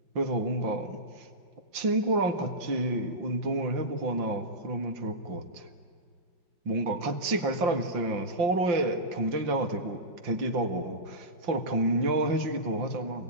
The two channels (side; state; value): left; late; 5.8 ms